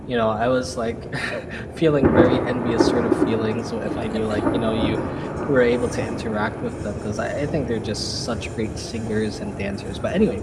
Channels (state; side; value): identical; both; correlation 1.00